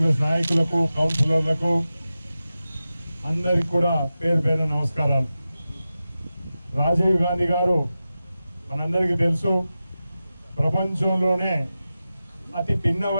నాయకులకు, కౌన్సిలర్లకు అందరికి కూడా పేరు పేరు నమస్కారాలు. రాజీవ్ గాంధీ గారు మనందరికీ తెలుసు, ప్రపంచంలోనే అతి పిన్న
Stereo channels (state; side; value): inverted; both; correlation -0.93